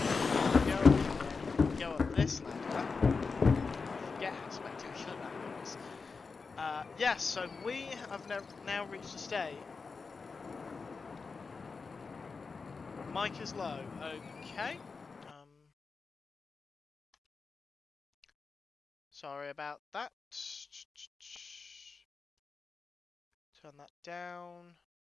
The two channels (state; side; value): quieter; right; 4.6 dB